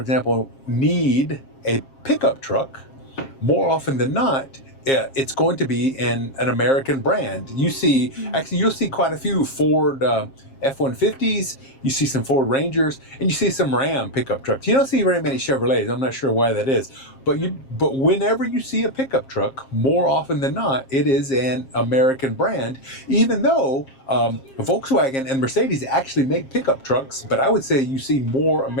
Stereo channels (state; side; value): late; right; 7.5 ms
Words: need a pickup truck, more often than not, it's going to be in an American brand. Mm. Actually, you'll see quite a few Ford F-150s. You see some Ford Rangers, and you see some Ram pickup trucks. You don't see very many Chevrolets. I'm not sure why that is, but whenever you see a pickup truck, more often than not, it is an American brand. Even though Volkswagen and Mercedes actually make pickup trucks, but I would say you see more